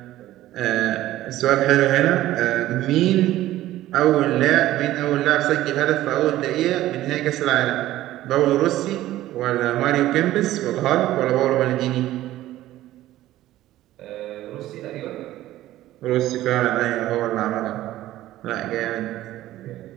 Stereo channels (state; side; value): quieter; left; 14.8 dB